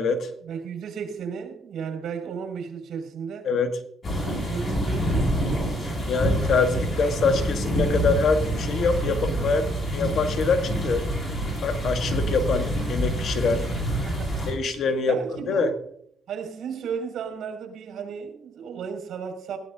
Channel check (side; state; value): both; normal; correlation 0.67